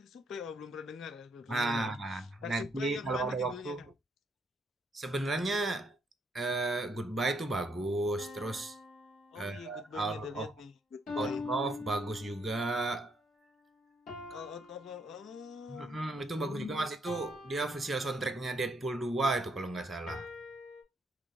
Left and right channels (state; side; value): normal; both; correlation 0.73